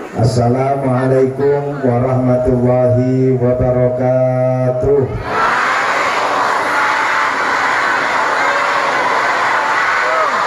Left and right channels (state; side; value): identical; both; correlation 1.00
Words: Assalamualaikum warahmatullahi wabarakatuh.